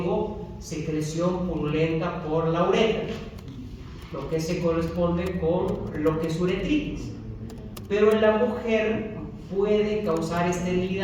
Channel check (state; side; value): identical; both; correlation 1.00